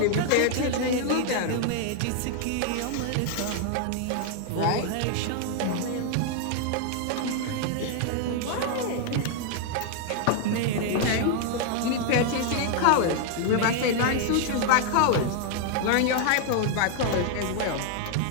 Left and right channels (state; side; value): different; both; correlation 0.00